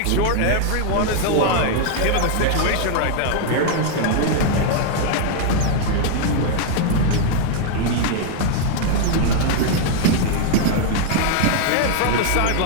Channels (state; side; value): different; both; correlation 0.00